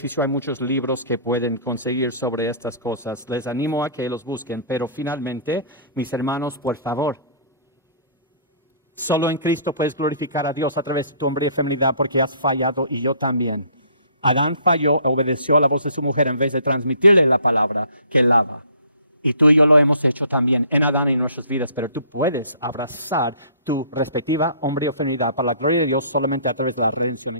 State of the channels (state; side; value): inverted; both; correlation -0.53